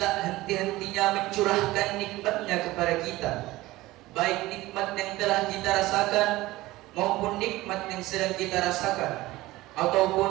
henti-hentinya mencurahkan nikmatnya kepada kita, baik nikmat yang telah kita rasakan maupun nikmat yang sedang kita rasakan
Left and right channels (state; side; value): quieter; left; 18.4 dB